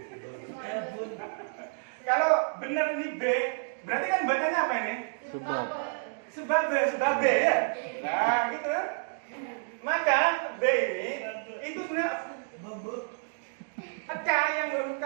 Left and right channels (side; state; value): left; silent; digital silence